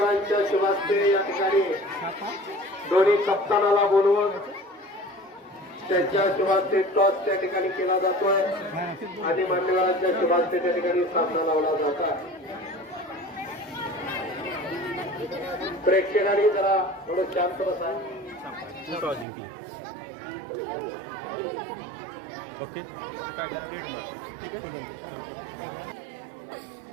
शुभास्ते या ठिकाणी दोन्ही कप्तानाला बोलवून त्यांच्या शुभास्ते टॉस त्या ठिकाणी केला जातोय आणि मान्यवरांच्या शुभास्ते त्या ठिकाणी सामना लावला जात आहे. प्रेक्षकांनी जरा थोडं शांत बसा.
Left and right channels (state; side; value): drops out; left; at 19.2 s